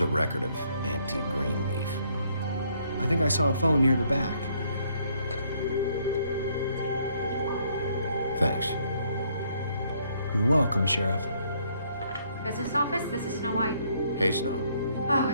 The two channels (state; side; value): inverted; both; correlation -0.68